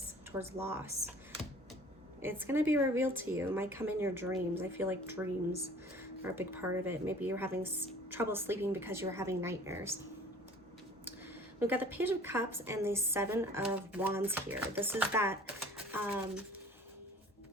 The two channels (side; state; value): both; normal; correlation 0.49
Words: towards loss. It's going to be revealed to you. It might come in your dreams. I feel like dreams are a big part of it. Maybe you're having trouble sleeping because you're having nightmares. We've got the Page of Cups and the Seven of Wands here. This is that